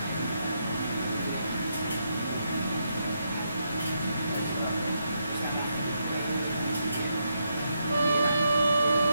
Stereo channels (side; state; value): both; inverted; correlation -0.80